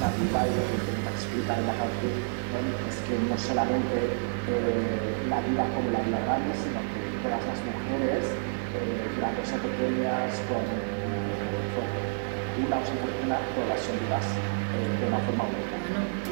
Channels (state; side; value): silent; left; digital silence